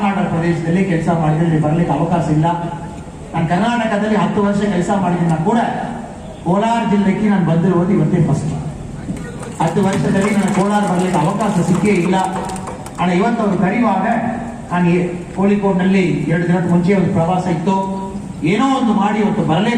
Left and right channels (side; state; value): both; identical; correlation 1.00